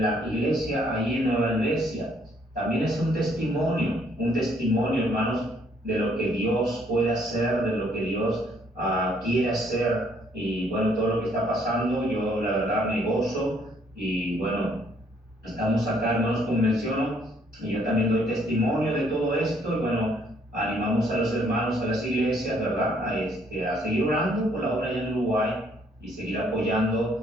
la iglesia, ahí en Nueva Iglesia. También es un testimonio, hermanos, de lo que Dios puede hacer, de lo que Dios quiere hacer. Y bueno, todo lo que está pasando, yo la verdad me gozo. Y bueno, estamos acá, hermanos, como menciono, y yo también doy testimonio de todo esto. Y bueno, animamos a los hermanos, a las iglesias, ¿verdad? A seguir orando por la obra allá en Uruguay y seguir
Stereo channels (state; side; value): normal; both; correlation 0.66